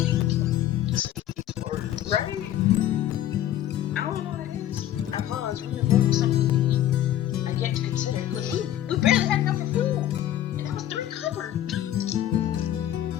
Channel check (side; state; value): right; quieter; 12.1 dB